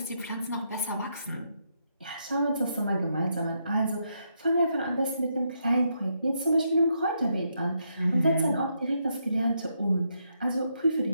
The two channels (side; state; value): both; inverted; correlation -0.79